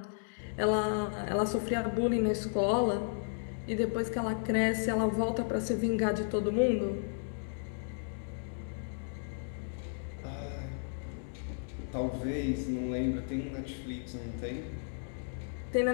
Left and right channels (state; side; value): silent; right; digital silence